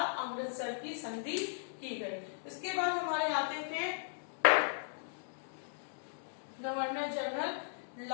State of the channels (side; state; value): right; silent; digital silence